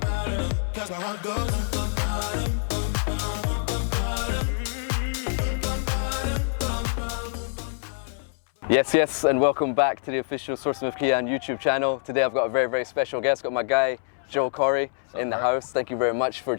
Yes, and welcome back to the official Sourcing with Kian YouTube channel. Today I've got a very, very special guest. Got my guy, Joel Corry, in the house. Thank you very much for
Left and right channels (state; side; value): silent; right; 61 dB below the other